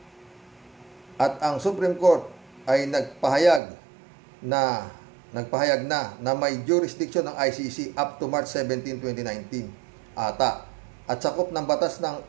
At ang Supreme Court ay nagpahayag na may jurisdiction ng ICC up to March 17, 2019 ata. At sakop ng batas ng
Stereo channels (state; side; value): drops out; left; at 3.6 s